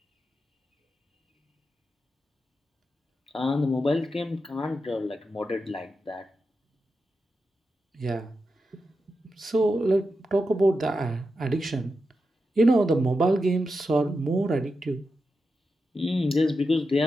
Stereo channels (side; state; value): both; normal; correlation 0.88